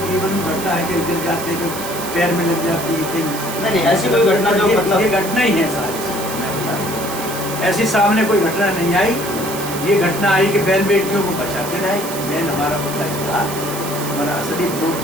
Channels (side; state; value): right; noise; hiss, 9 dB below the sound